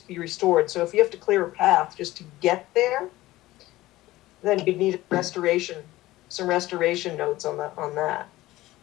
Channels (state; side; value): quieter; right; 17.3 dB